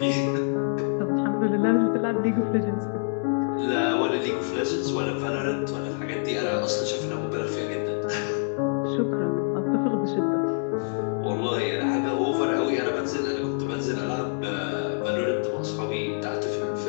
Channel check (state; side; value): silent; right; digital silence